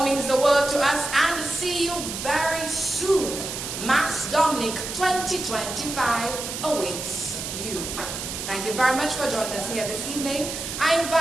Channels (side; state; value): right; noise; hiss, 6 dB below the sound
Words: means the world to us, and see you very soon. Mass Dominic 2025 awaits you. Thank you very much for joining us here this evening. I